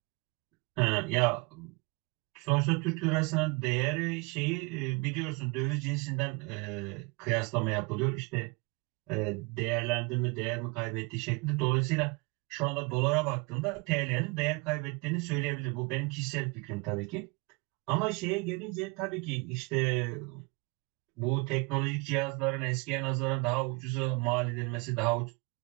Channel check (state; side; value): quieter; left; 28.5 dB